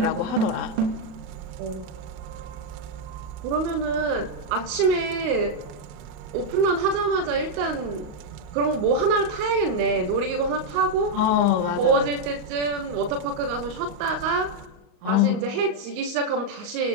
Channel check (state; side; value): late; left; 38 ms